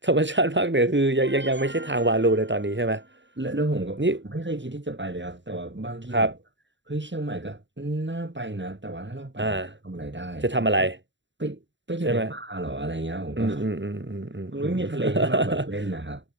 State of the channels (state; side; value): late; left; 0.54 ms